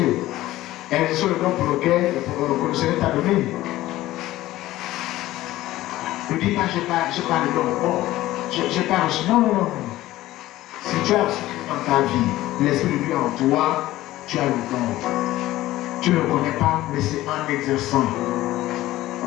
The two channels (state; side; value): quieter; right; 16.0 dB